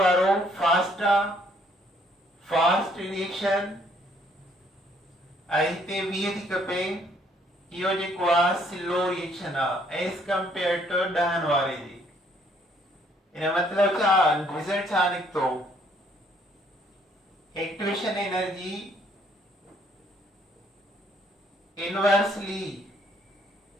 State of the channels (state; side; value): normal; both; correlation 0.65